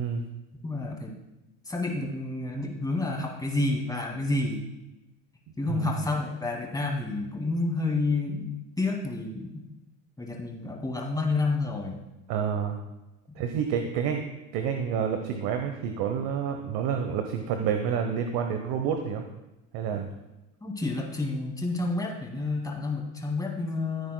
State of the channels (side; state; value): both; normal; correlation 0.44